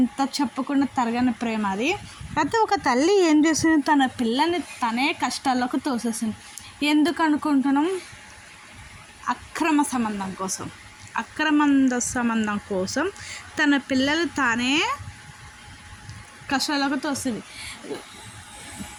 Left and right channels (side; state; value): both; identical; correlation 1.00